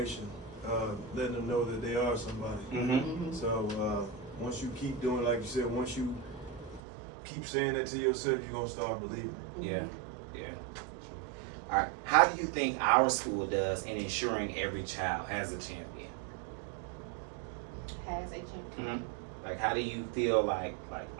letting them know that they are somebody. Mm-hmm. So once you keep doing, like you said, once you keep saying that to yourself, you're going to start believing it. Yeah. All right. How do you think our school does in ensuring every child has a champion? Has a champion. Mm-hmm. Like, how do you feel like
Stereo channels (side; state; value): left; drops out; at 6.8 s